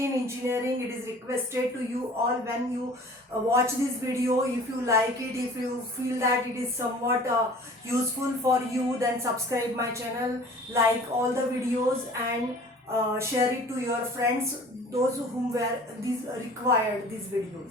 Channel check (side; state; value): both; normal; correlation 0.47